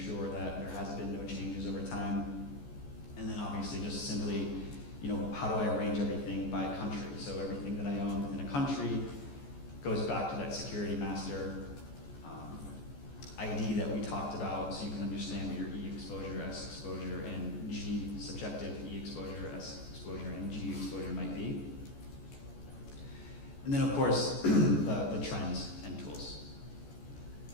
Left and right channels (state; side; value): late; right; 14 ms